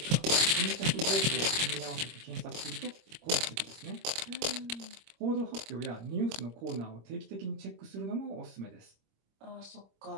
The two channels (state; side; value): late; left; 26 ms